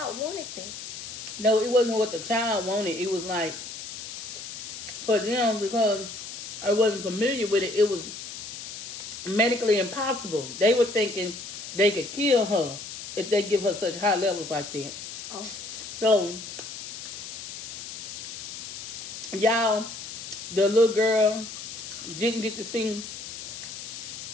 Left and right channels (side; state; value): left; noise; hiss, 9 dB below the sound